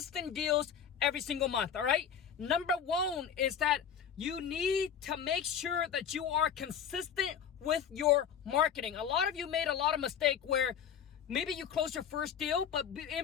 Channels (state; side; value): quieter; right; 8.1 dB